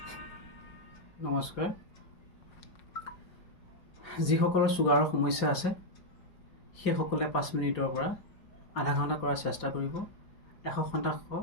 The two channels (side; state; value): right; late; 5.0 ms